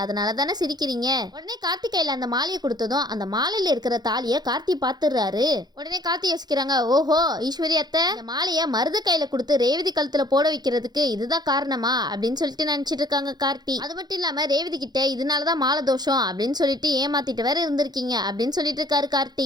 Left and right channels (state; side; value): late; left; 0.20 ms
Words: அதனால தானே சிரிக்கிறீங்க. உடனே கார்த்தி கையில அந்த மாலையை கொடுத்ததும் அந்த மாலையில இருக்கிற தாலியை கார்த்தி பார்த்துடுறாரு. உடனே கார்த்தி யோசிக்கிறாங்க, ஓஹோ ஈஸ்வரி அத்தை இந்த மாலையை மருது கையில கொடுத்து ரேவதி கழுத்துல போட வைக்கிறதுக்கு இதுதான் காரணமா அப்படின்னு சொல்லிட்டு நினைச்சிட்டு இருக்காங்க கார்த்தி. அது மட்டும் இல்லாம ரேவதி கிட்ட இதனாலதான் மாலை தோஷம் அப்படின்னு சொல்லிட்டு ஏமாத்திட்டு வேற இருந்திருக்கீங்க அப்படின்னு சொல்லிட்டு இருக்காரு